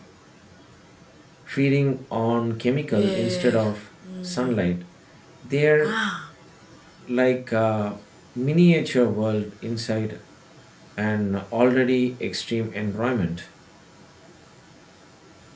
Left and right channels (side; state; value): both; identical; correlation 1.00